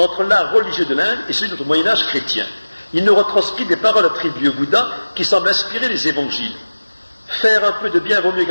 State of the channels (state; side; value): inverted; both; correlation -1.00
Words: l'art religieux de l'Inde et celui de notre Moyen-Âge chrétien. Il nous retranscrit des paroles attribuées au Bouddha qui semblent inspirer les évangiles. Faire un peu de bien vaut mieux